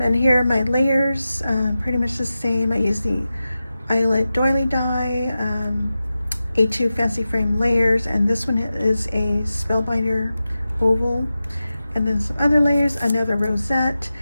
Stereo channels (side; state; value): both; inverted; correlation -0.93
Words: here are my layers, pretty much the same. I used the Eyelet Doily Die, A2 Fancy Frame layers, and this one is a Spellbinder oval. And then some other layers, another rosette,